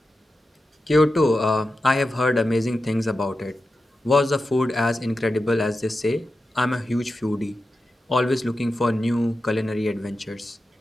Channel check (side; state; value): both; normal; correlation 0.91